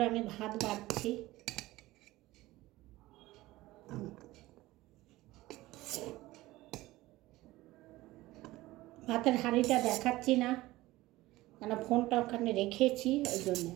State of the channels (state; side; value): quieter; left; 18.2 dB